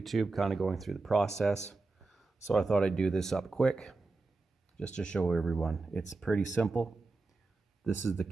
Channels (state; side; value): quieter; left; 3.6 dB